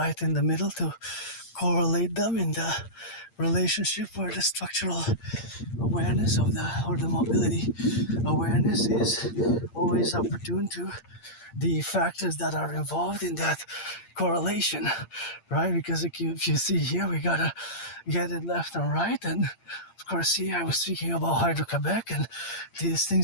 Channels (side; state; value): right; late; 8.7 ms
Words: in the middle, to correlate them in the relationship where the structural awareness or the mobility awareness is always opportune to the factors that are involved in that correlation, right? Because if you see here, we gotta get it left and right. And of course, see, I was speaking about Hydro-Quebec, and these